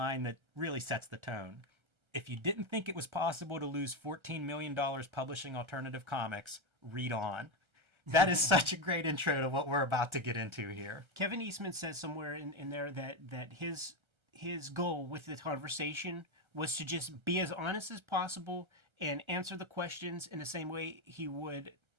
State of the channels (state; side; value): late; left; 1.3 ms